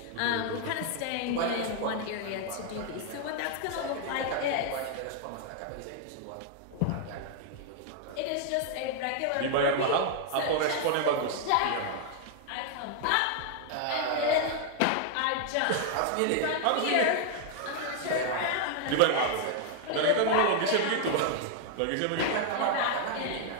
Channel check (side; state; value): both; different; correlation 0.00